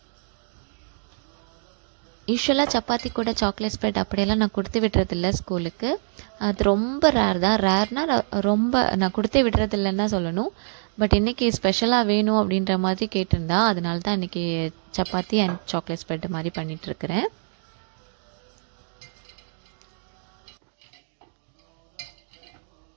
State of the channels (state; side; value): silent; left; digital silence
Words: யூஸ்வலாக சப்பாத்தி கூட சாக்லேட் ஸ்ப்ரெட் அப்படியெல்லாம் நான் கொடுத்து விடுறதில்ல ஸ்கூலுக்கு. அது ரொம்ப ரேர் தான். ரேர்னால் ரொம்ப நான் கொடுத்தே விடுறதில்லன்னு தான் சொல்லணும். பட் இன்றைக்கி ஸ்பெஷலாக வேணும் அப்படின்ற மாதிரி கேட்டிருந்தா, அதனால தான் இன்றைக்கி சப்பாத்தி அண்ட் சாக்லேட் ஸ்ப்ரெட் மாதிரி பண்ணிகிட்ருக்கிறேன்.